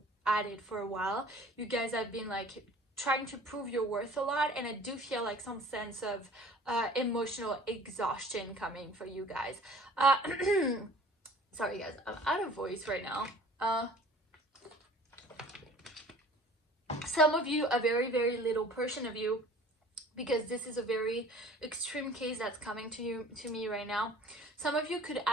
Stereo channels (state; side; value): normal; both; correlation 0.48